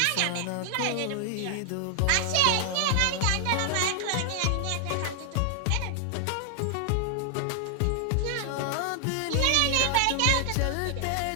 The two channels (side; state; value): both; different; correlation 0.00